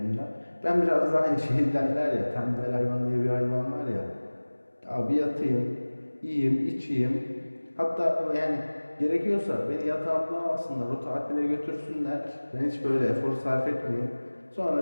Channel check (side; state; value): both; inverted; correlation -1.00